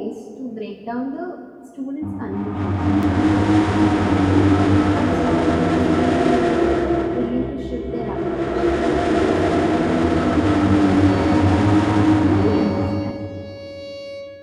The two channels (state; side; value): identical; both; correlation 1.00